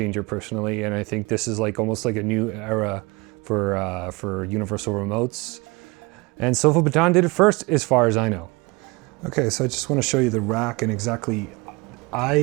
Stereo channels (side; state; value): left; quieter; 25.5 dB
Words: personally. And I think this is almost like a new era for universal remotes. And SofaBaton did it first, as far as I know. Okay, so I just want to show you the rack and exactly,